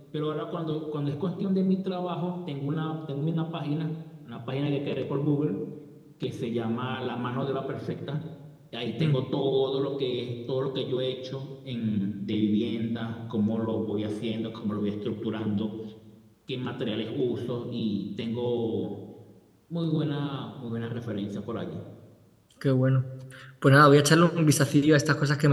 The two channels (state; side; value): identical; both; correlation 1.00